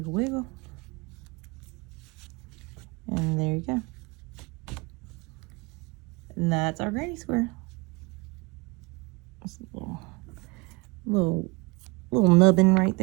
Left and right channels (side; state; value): left; quieter; 26.7 dB